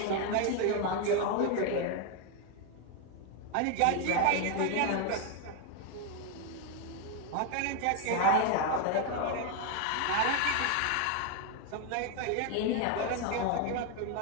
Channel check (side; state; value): both; different; correlation 0.01